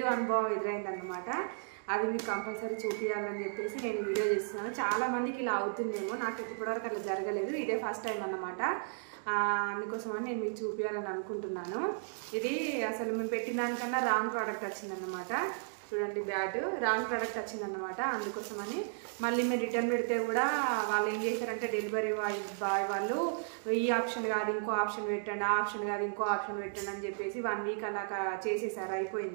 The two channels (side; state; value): left; silent; digital silence